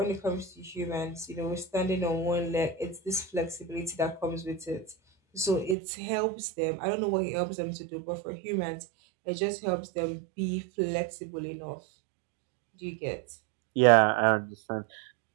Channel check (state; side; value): drops out; left; at 5.8 s